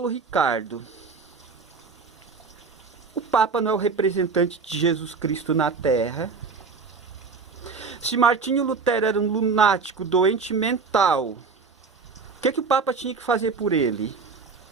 Ricardo, o Papa não é o representante de Jesus Cristo na Terra? Se Martinho Lutero era um lunático, doente mental, o que o Papa tinha que fazer por ele?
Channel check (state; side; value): quieter; left; 4.9 dB